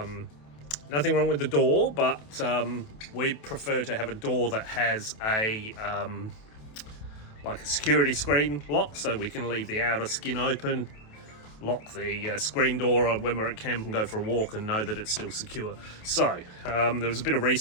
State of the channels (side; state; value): right; late; 28 ms